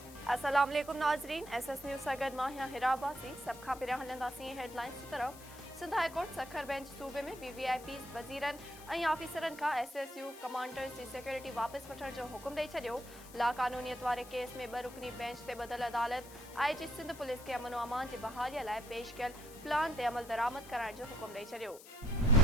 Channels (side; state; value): left; noise; hiss, 18 dB below the sound